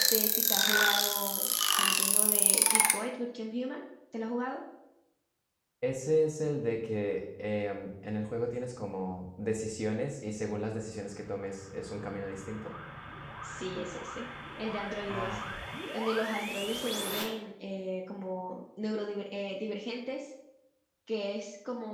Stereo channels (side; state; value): both; identical; correlation 1.00